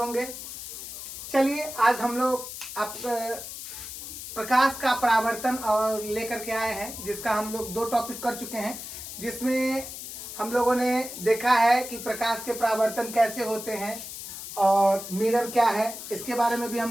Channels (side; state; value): left; noise; hiss, 10 dB below the sound